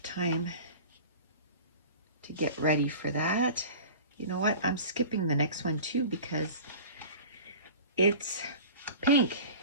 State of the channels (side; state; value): both; inverted; correlation -0.39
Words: time to get ready for that. You know what? I'm skipping the next one too because it's pink.